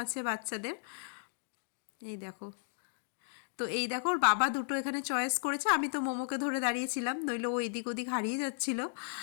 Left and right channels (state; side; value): silent; right; digital silence